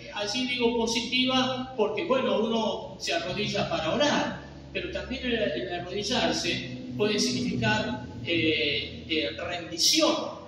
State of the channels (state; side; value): identical; both; correlation 1.00